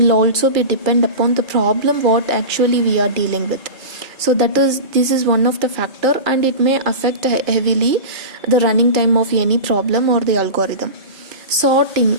also be depend upon the problem what actually we are dealing with. So this is one of the factor, and it may affect heavily the running time of any problem or the algorithm. Sorting.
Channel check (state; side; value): late; left; 2.4 ms